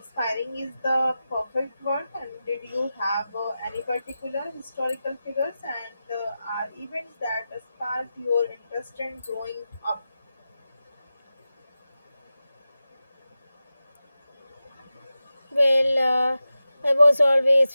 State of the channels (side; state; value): both; inverted; correlation -0.92